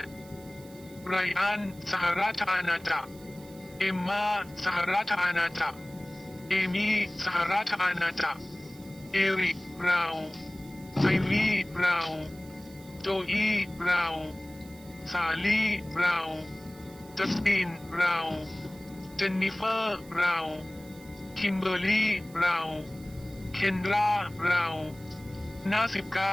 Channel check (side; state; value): right; noise; hiss, 23 dB below the sound